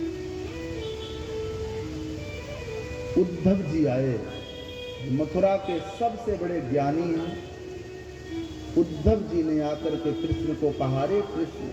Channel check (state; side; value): identical; both; correlation 1.00